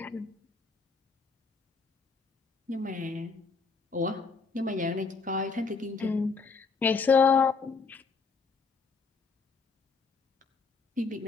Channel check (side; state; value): right; quieter; 4.8 dB